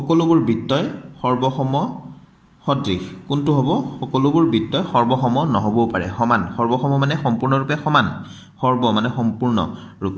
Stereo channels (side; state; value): both; identical; correlation 1.00